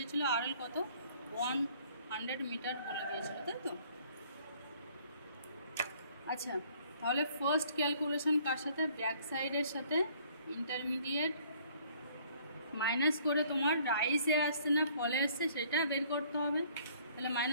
আরএল কত 100 মিটার বলে দিয়েছিল, তাই তো? আচ্ছা, তাহলে ফার্স্ট ক্যালকুলেশন কার সাথে? ব্যাক সাইডের সাথে ইন্টারমিডিয়েট মাইনাস করে তোমার রাইসে আসছে না ফলে আসছে সেটা বের করতে হবে। তাহলে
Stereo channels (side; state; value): both; inverted; correlation -0.59